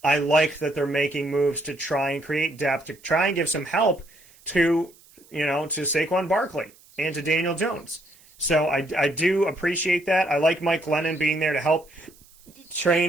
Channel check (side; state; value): right; noise; hiss, 27 dB below the sound